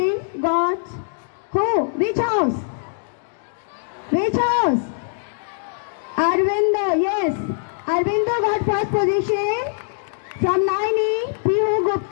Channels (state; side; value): silent; right; digital silence